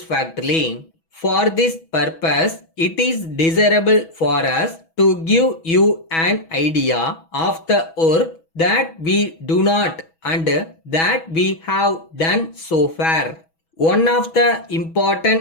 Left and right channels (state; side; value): late; right; 6.2 ms